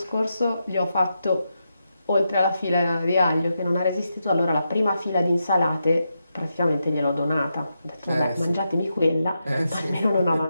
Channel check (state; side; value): inverted; both; correlation -0.86